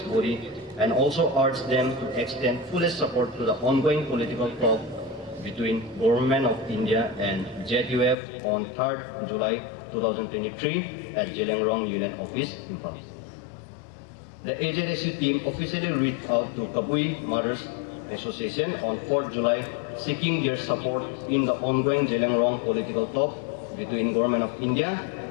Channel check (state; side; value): drops out; right; at 8.2 s